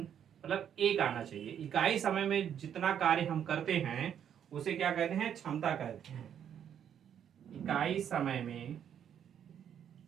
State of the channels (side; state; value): left; quieter; 9.1 dB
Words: मतलब एक आना चाहिए। इकाई समय में जितना कार्य हम करते हैं उसे क्या कहते हैं, क्षमता कहते हैं। इकाई समय में,